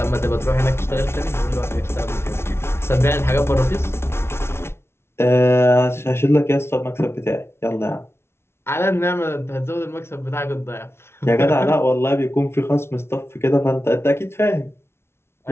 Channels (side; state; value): right; late; 0.12 ms